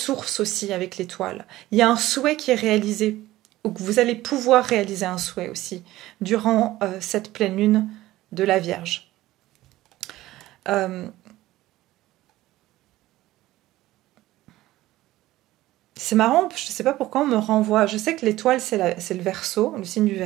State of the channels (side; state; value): left; quieter; 16.3 dB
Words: aussi avec l'étoile. Il y a un souhait qui est réalisé, ou que vous allez pouvoir réaliser un souhait aussi durant cette pleine lune de la Vierge. C'est marrant, je ne sais pas pourquoi on me renvoie. Je sais que l'étoile, c'est le Verseau, le signe du